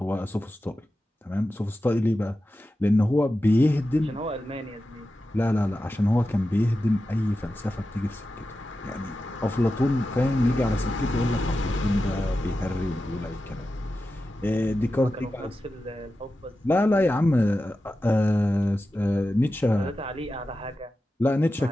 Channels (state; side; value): normal; both; correlation 0.92